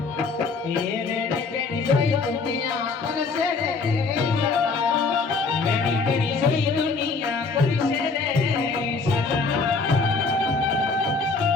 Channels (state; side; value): quieter; right; 4.3 dB